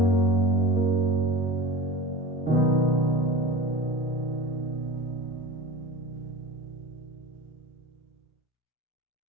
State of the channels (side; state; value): both; normal; correlation 0.33